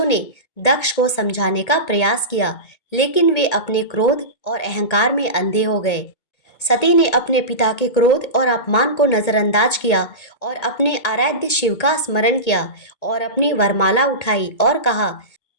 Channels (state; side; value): late; right; 1.8 ms